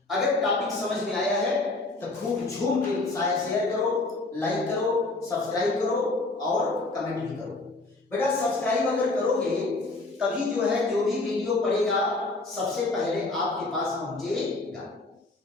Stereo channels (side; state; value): right; quieter; 3.2 dB